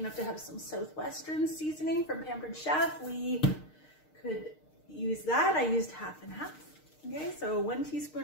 to have some Southwestern seasoning from Pampered Chef, we could use that. I used half and half. Okay, so 1 teaspoon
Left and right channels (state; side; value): late; right; 6.5 ms